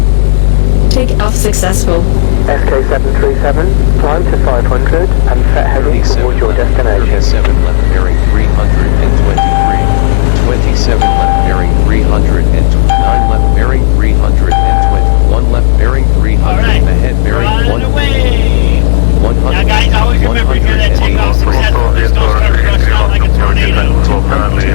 Take off successful. SK737, climb to 500 and set heading towards your destination. 37 left bearing 323. 27 left bearing 309 left bearing 320. 1 left bearing 300. Alright, Ahead bearing we're on 1. the way. 100. Now guys, always remember here that takeoff successful. There's no start rushing out like a tornado. 200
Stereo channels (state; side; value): silent; right; 65 dB below the other